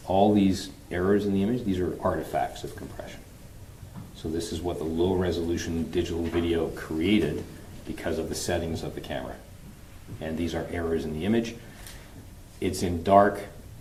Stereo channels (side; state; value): both; identical; correlation 1.00